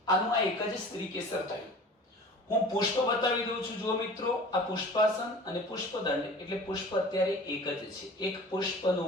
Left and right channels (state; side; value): normal; both; correlation 0.42